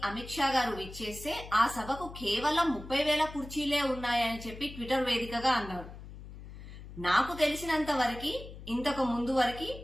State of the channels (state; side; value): noise; left; hum, 14 dB below the sound